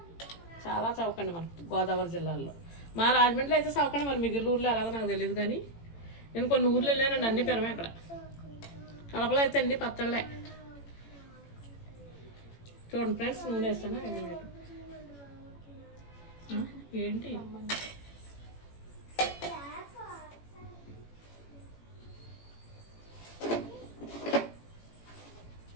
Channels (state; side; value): late; right; 18 ms